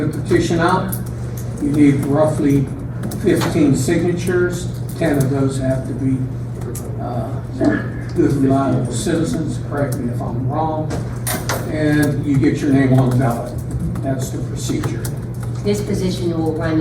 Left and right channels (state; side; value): identical; both; correlation 1.00